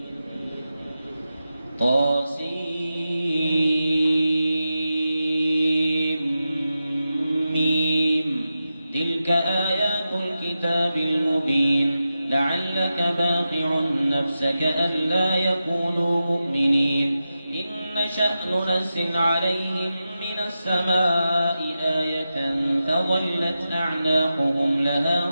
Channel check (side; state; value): both; inverted; correlation -0.91